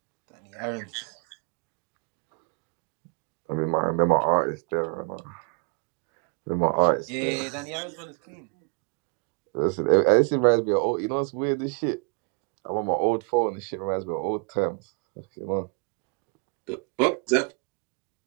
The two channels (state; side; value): quieter; left; 33.4 dB